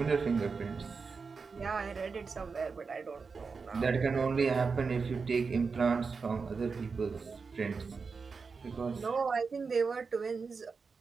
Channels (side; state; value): left; quieter; 4.9 dB